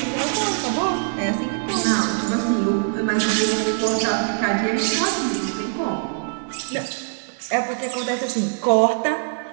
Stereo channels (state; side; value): silent; left; 64 dB below the other